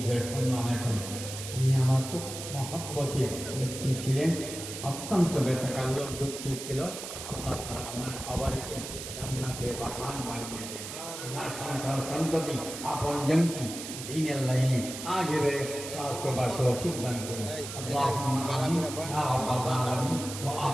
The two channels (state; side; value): noise; right; hiss, 9 dB below the sound